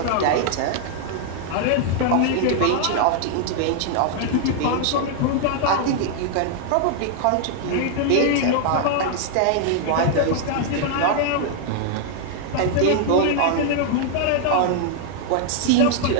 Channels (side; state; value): both; different; correlation 0.00